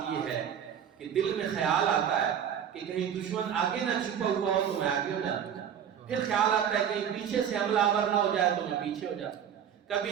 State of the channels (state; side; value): quieter; left; 8.7 dB